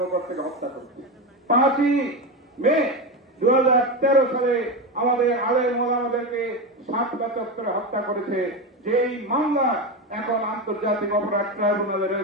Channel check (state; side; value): normal; both; correlation 0.17